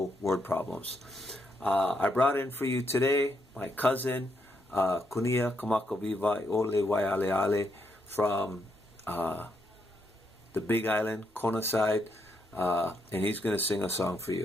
word problems. I brought in for you today my cousin, Kunia Kamakaviva Ole Waiale Ale, from the Big Island, Kona side, and he's going to sing a song for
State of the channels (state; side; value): normal; both; correlation 0.78